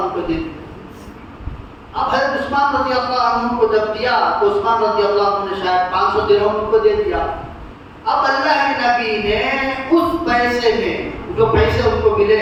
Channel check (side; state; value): both; identical; correlation 1.00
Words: کو دے دیا۔ اب حضرت عثمان رضی اللہ عنہ کو جب دیا تو عثمان رضی اللہ عنہ نے شاید 500 درہم کو دے دیا۔ اب اللہ کے نبی نے اس پیسے میں، جو پیسے ان کو ملے